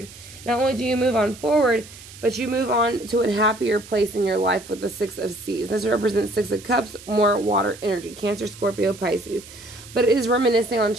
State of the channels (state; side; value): noise; right; hiss, 18 dB below the sound